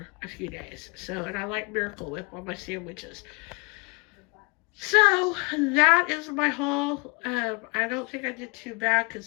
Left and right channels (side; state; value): right; quieter; 32.1 dB